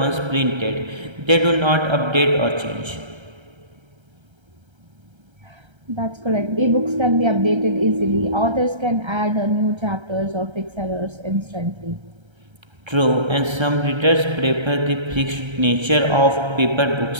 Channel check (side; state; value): left; late; 1.3 ms